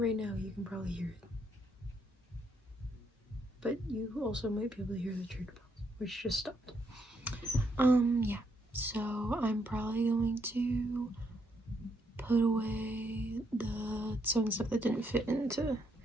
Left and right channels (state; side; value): normal; both; correlation 0.75